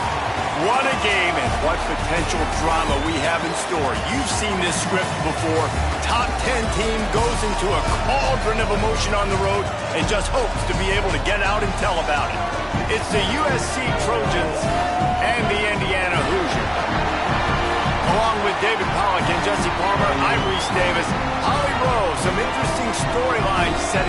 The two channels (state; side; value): identical; both; correlation 1.00